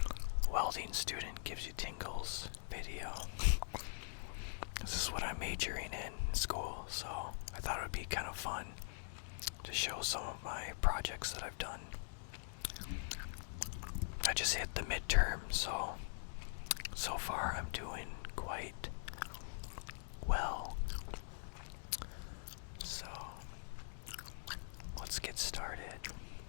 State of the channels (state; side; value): silent; right; digital silence